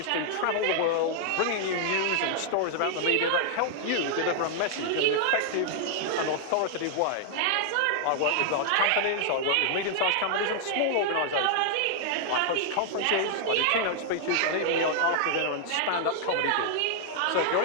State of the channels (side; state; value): both; different; correlation 0.00